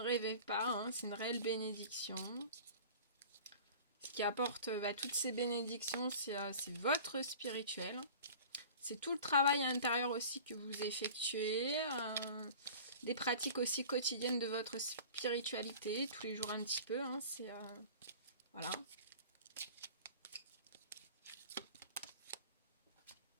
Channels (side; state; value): both; inverted; correlation -0.41